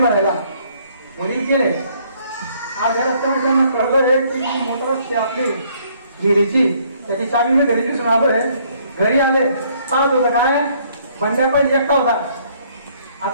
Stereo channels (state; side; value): inverted; both; correlation -0.64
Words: भरायला. वडील गेले. आज या रस्त्यावर त्यांना कळलं की मोटर असते आपली विहिरीची, त्याची चावी मी घरी दिसून आलोय. घरी आले पाहत होतं काय, बंड्या पाहिजे एकटा होता.